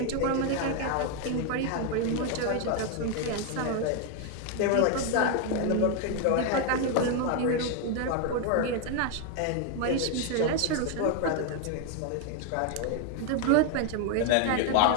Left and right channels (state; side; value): different; both; correlation 0.01